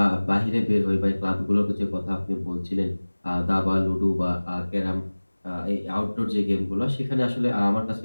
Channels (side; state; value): both; inverted; correlation -1.00